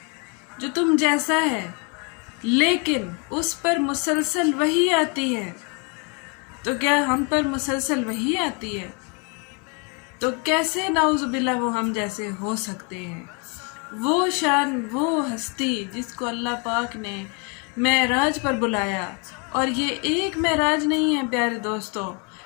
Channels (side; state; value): right; quieter; 33.7 dB